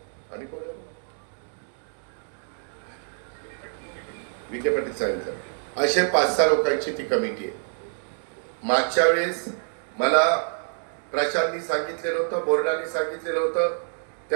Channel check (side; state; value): left; silent; digital silence